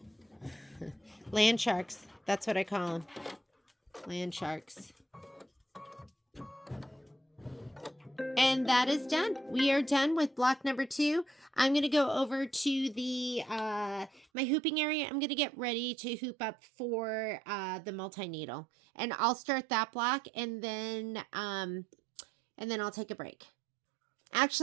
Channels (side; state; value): left; drops out; at 14.2 s